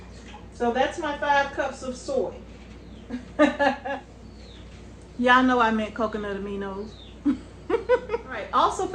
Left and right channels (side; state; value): both; identical; correlation 1.00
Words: So that's my 5 cups of soy. Y'all know I meant coconut aminos. Alright, also